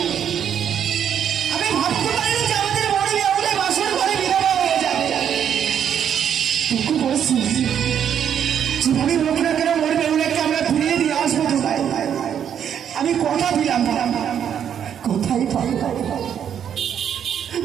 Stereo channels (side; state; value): left; quieter; 8.8 dB